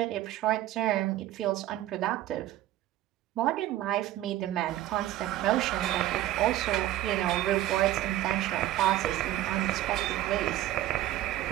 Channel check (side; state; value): left; quieter; 14.4 dB